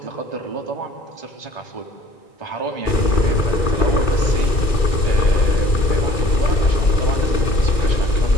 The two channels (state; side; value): late; right; 2.3 ms